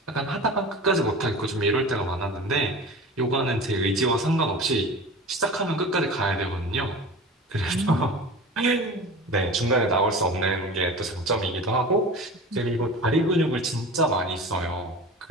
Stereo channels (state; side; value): normal; both; correlation 0.35